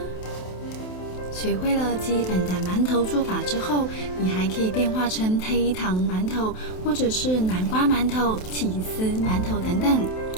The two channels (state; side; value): late; right; 27 ms